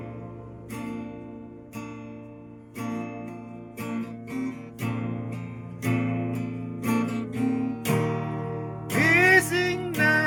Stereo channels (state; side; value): identical; both; correlation 1.00